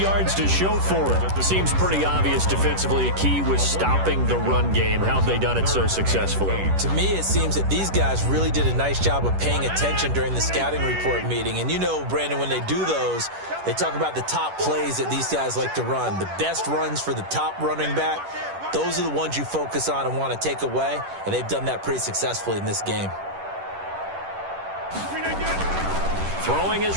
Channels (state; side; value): late; left; 10 ms